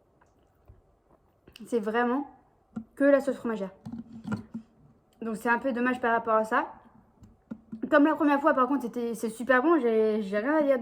C'est vraiment que la sauce fromagère. Donc, c'est un peu dommage par rapport à ça. Comme la première fois, par contre, c'est super bon. J'ai rien à dire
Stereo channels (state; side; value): identical; both; correlation 1.00